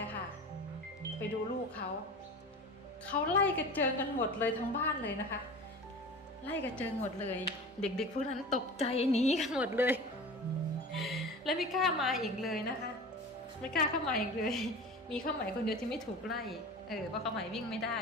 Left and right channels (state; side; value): normal; both; correlation 0.35